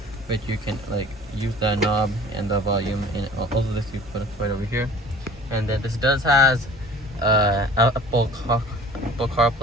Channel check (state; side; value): normal; both; correlation 0.46